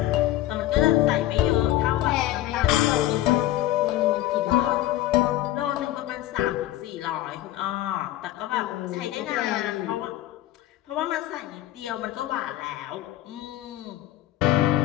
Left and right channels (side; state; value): right; quieter; 14.6 dB